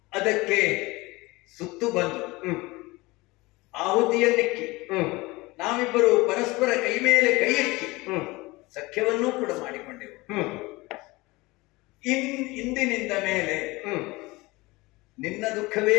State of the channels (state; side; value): quieter; right; 22.2 dB